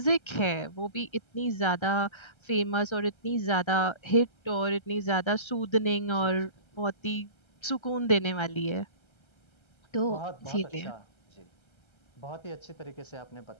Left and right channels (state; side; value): late; right; 1.3 ms